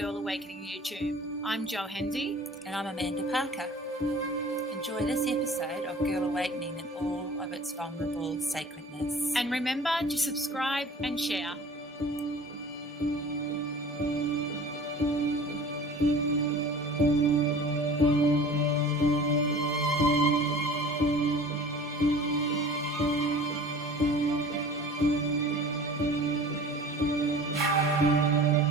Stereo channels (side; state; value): both; normal; correlation 0.43